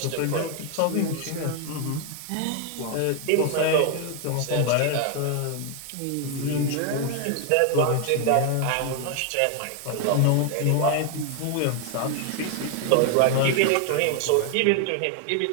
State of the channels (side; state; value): both; different; correlation 0.01